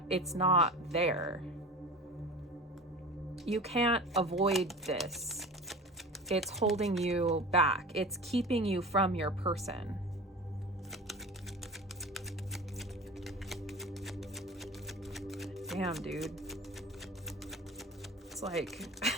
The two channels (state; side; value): normal; both; correlation 0.35